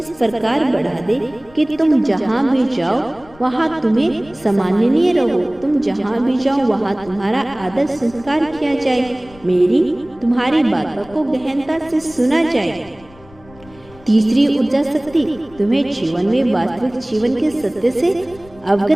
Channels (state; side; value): noise; left; rumble, 23 dB below the sound